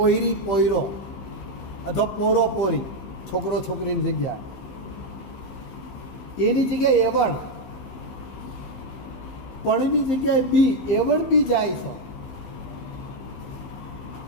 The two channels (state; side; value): late; right; 15 ms